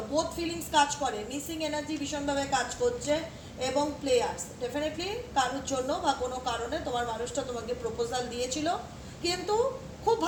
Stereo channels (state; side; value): identical; both; correlation 1.00